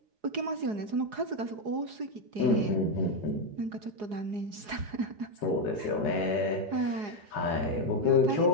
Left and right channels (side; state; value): left; late; 4.8 ms